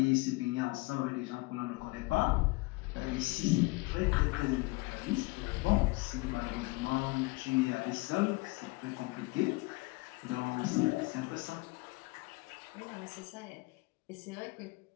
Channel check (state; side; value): quieter; right; 24.6 dB